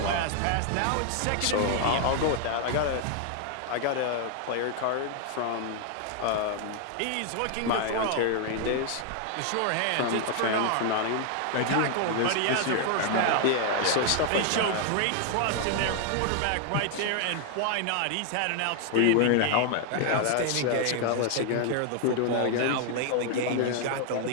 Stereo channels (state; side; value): different; both; correlation 0.00